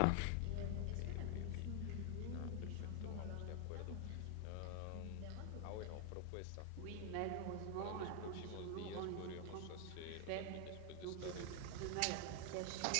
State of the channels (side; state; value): both; different; correlation 0.00